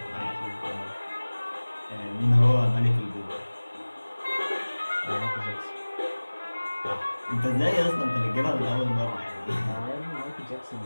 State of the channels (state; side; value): inverted; both; correlation -1.00